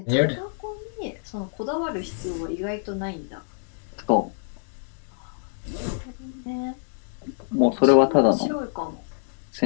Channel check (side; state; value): right; silent; digital silence